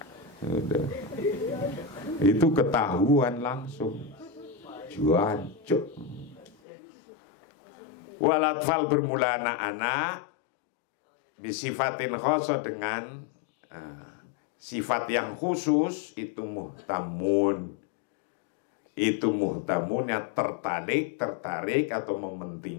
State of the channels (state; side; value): drops out; right; at 6.6 s